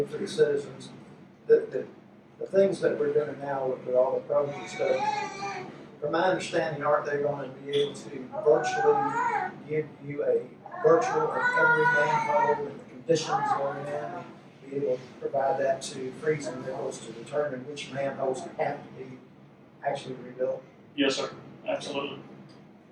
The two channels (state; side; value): identical; both; correlation 1.00